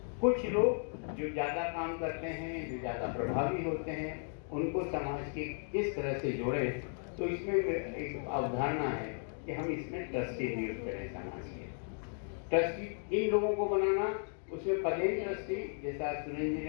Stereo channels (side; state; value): right; silent; 54 dB below the other